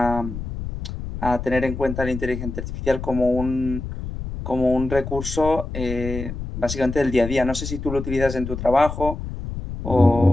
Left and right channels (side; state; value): left; noise; rumble, 7 dB below the sound